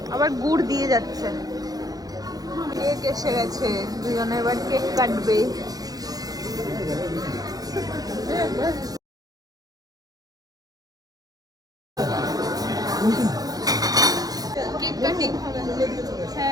আবার গুড় দিয়ে যাচ্ছে। কেক এসে গেছে, দুজনে এবার কেক কাটবে। কেক কাটিং হবে।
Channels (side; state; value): left; late; 0.18 ms